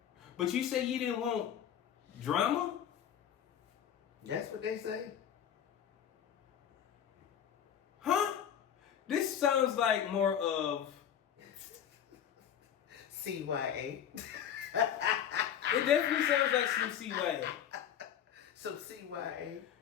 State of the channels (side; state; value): right; quieter; 9.3 dB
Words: But you say you didn't want drama? That's what they say. Huh? This sounds like more of CYA. It definitely sounds like some CYA. Some CYA.